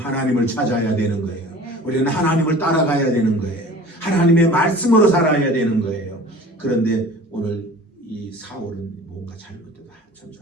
찾아야 되는 거예요. 우리는 하나님을 따라가야 되는 거예요. 하나님의 말씀으로 살아야 되는 거예요. 그런데 오늘 이 사울은 뭔가 잘못됐다. 한참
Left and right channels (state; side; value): normal; both; correlation 0.43